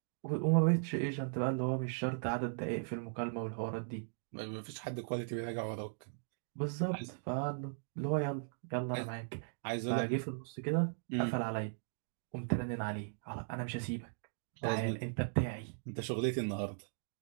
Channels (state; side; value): silent; left; digital silence